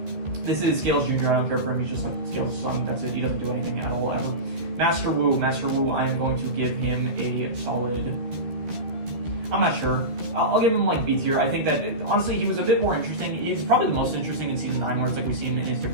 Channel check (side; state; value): left; late; 13 ms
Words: This is Scales Jr. I don't care for him. He's just like Scales' son. That's it. He doesn't do anything at all ever. Master Wu, I am going to give him a solid, I'm not sure. I'll give him like B tier. I think that honestly he was a bit more interesting. He's probably the most interesting in season 9, where it's like we see him in his